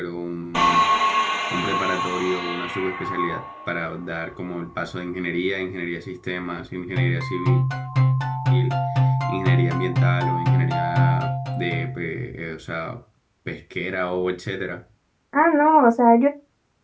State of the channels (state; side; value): identical; both; correlation 1.00